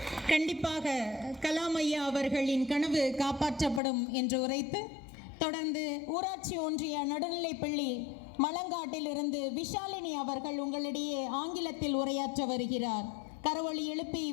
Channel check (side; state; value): right; drops out; at 3.8 s